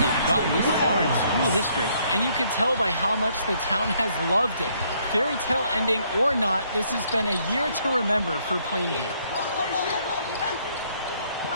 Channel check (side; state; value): both; inverted; correlation -0.68